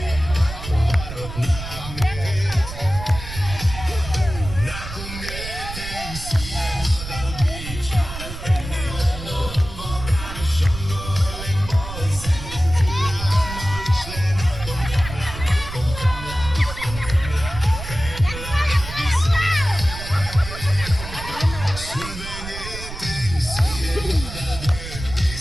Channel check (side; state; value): right; noise; rumble, 10 dB below the sound